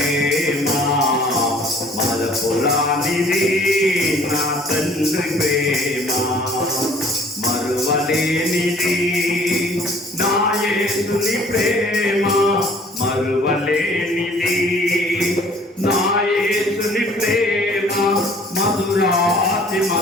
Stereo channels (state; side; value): normal; both; correlation 0.54